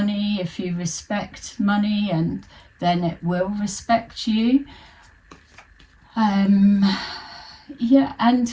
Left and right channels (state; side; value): identical; both; correlation 1.00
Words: If you respect money, and then it will respect you. Yeah,